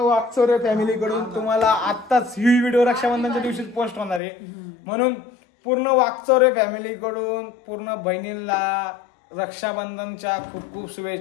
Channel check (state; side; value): drops out; right; at 4.2 s